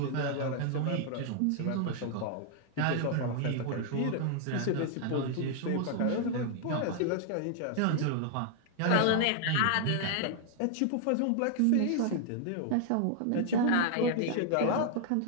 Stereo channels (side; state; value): both; different; correlation 0.00